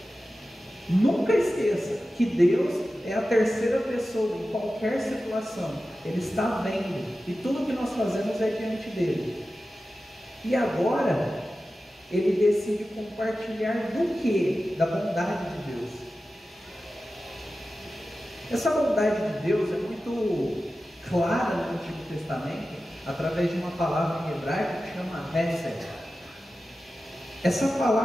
Nunca esqueça que Deus é a terceira pessoa em qualquer situação. Ele está vendo, e tudo que nós fazemos é diante dele. E agora, ele decide compartilhar do que? Da bondade de Deus. Essa bondade de Deus é muito clara no Antigo Testamento, através de uma palavra em hebraico que chama Hesed. Essa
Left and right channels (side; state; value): both; normal; correlation 0.94